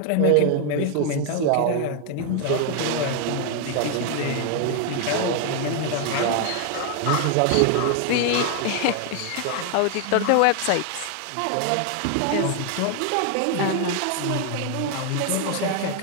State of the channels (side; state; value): both; different; correlation 0.00